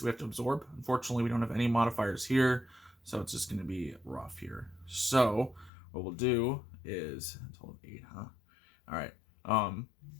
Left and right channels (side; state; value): right; drops out; at 5.7 s